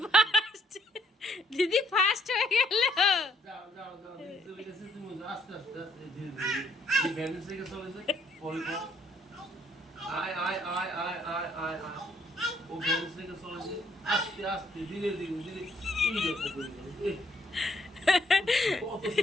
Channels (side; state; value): both; normal; correlation 0.68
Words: ফার্স্ট, দিদি ফার্স্ট হয়ে গেল। যাও যাও যাও, দিদি চলে গেছে, তুমি আস্তে আস্তে আস্তে ধীরে ধীরে এই ব্যালেন্স থেকে চলে যায় পরে পর। আয় আয় আয় আয় আয় আয় আয়, ও ব্যালেন্স থেকে চলে যায় আস্তে আস্তে ধীরে ধীরে ধীরে। এই দেখো এই কত